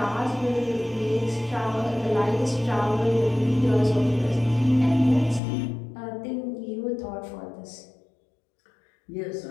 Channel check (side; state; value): right; drops out; at 5.4 s